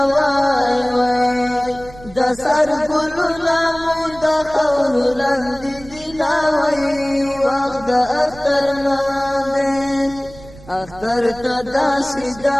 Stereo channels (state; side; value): noise; right; rumble, 20 dB below the sound